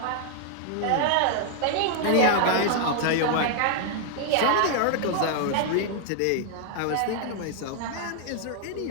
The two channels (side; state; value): both; different; correlation 0.00